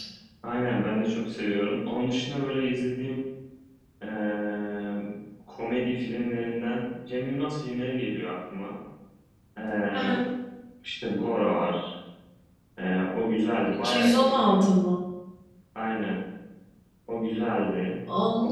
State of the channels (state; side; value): identical; both; correlation 1.00